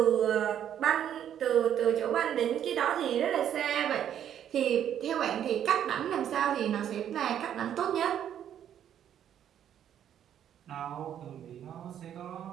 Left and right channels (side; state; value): left; quieter; 9.9 dB